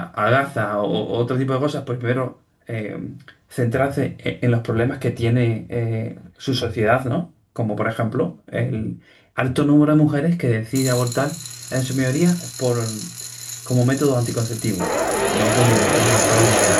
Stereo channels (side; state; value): both; identical; correlation 1.00